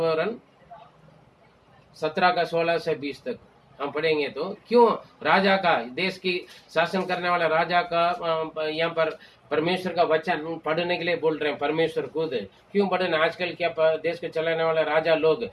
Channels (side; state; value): both; identical; correlation 1.00